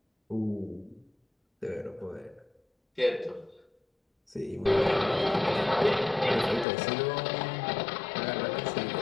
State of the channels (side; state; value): right; drops out; at 6.7 s